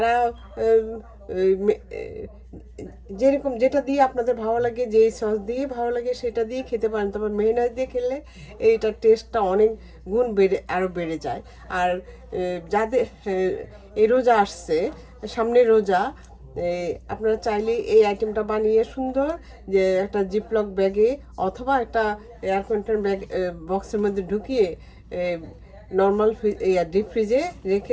এই যেরকম যেটা দিয়ে আপনাদের ভালো লাগে, যে সস দিয়ে ভালো লাগে সেটা দিয়ে খেতে পারেন। তবে মেয়োনেজ দিয়ে খেলে এইটার টেস্টটা অনেক গুণ আরও বেড়ে যায়। আর যাদের এই রোজা আসছে, সামনে রোজা, আপনারা চাইলে এই আইটেমটা বানিয়ে সুন্দর যে একটা জিপলক ব্যাগে অথবা একটা এয়ার কন্টেনার ব্যাগ বক্সের মধ্যে ঢুকিয়ে নর্মাল ডিপ ফ্রিজে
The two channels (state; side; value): identical; both; correlation 1.00